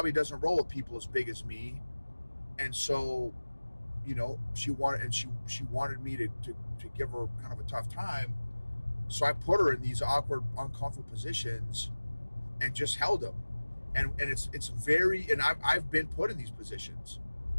doesn't roll with people as big as me. And so, she wanted me to give her kind of a tough time. So I put her in these awkward, uncomfortable positions and just held them. And it's very, and I've been put in these positions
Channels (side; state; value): both; inverted; correlation -1.00